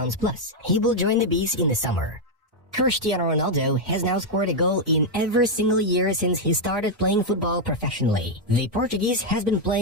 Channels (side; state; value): both; normal; correlation 0.00